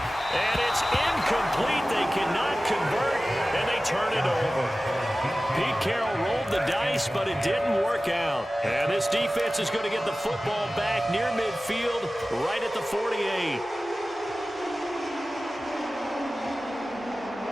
And it's incomplete. They cannot convert, and they turn it over. Pete Carroll rolled the dice, but it didn't work out. And this defense is going to get the football back near midfield, right at the 48.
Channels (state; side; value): normal; both; correlation 0.96